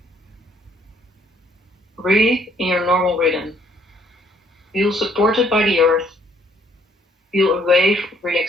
Breathe in your normal rhythm. Feel supported by the earth. Feel a wave of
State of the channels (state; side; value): normal; both; correlation 0.65